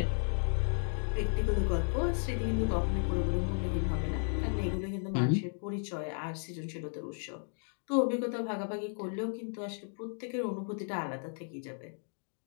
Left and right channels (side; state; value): right; silent; 55 dB below the other